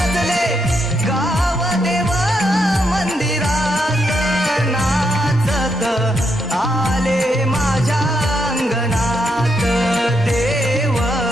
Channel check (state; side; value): normal; both; correlation 0.79